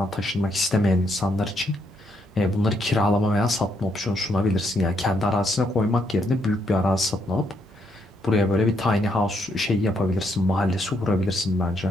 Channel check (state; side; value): normal; both; correlation 0.75